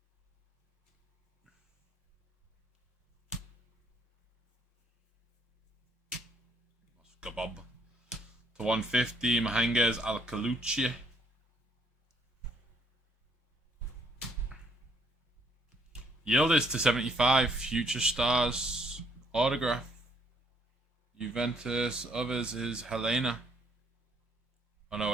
Bob. To 150, Mahangas Alcalucci. Yildiz to 75, Future Stars Autograph. Juventus, others is Helena. Oh no,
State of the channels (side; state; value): both; normal; correlation 0.67